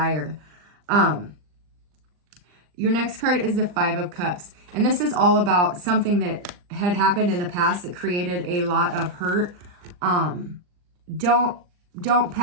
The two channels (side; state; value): left; late; 39 ms